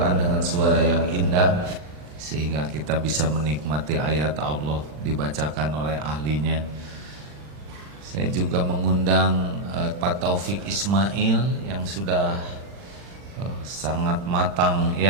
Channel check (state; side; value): late; left; 40 ms